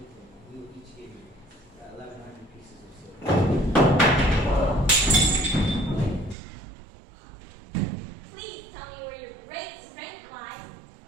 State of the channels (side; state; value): left; drops out; at 6.4 s